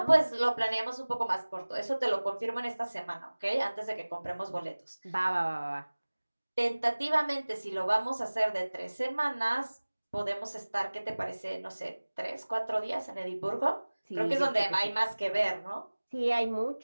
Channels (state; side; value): inverted; both; correlation -1.00